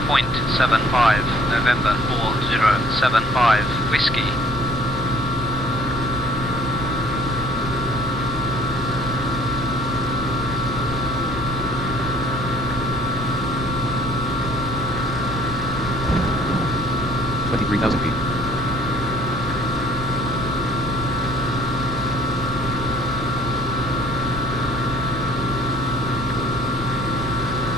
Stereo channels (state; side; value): normal; both; correlation 0.57